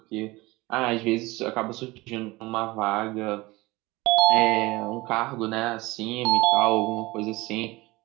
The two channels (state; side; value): quieter; left; 21.3 dB